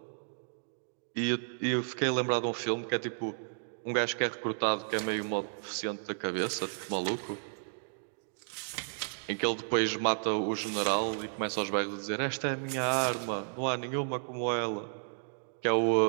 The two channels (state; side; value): silent; left; digital silence